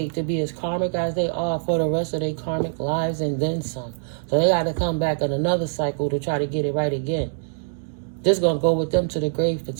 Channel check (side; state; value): left; silent; digital silence